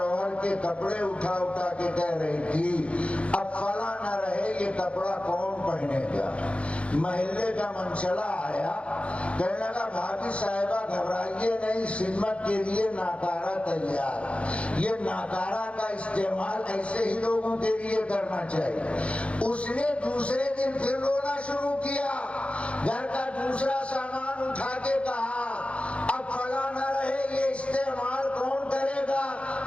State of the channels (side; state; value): right; late; 0.061 ms